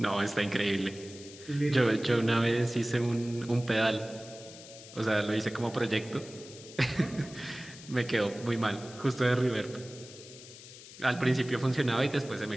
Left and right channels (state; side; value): noise; left; hiss, 17 dB below the sound